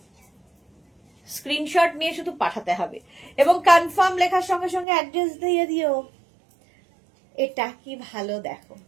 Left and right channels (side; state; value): left; drops out; at 4.9 s